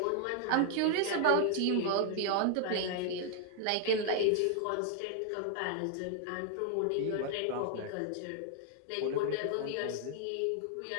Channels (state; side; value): different; both; correlation 0.00